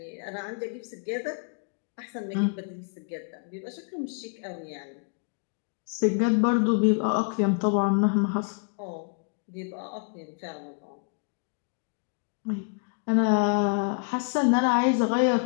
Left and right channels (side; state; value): right; quieter; 39.2 dB